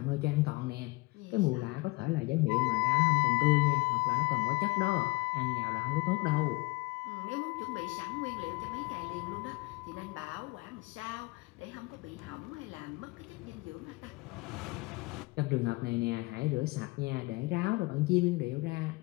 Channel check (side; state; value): right; quieter; 23.6 dB